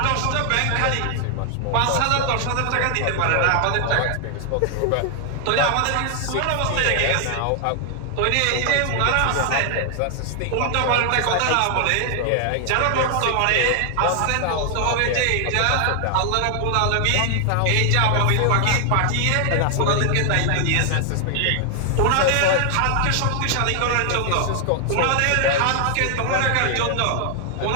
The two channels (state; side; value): different; both; correlation 0.00